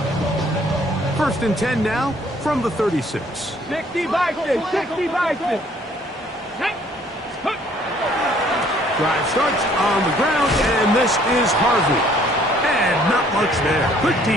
1st and 10 now from the 36. 60 Bison, 60 Bison. Drive starts on the ground, and this is Harvey. And not much there. Good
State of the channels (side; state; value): both; normal; correlation 0.60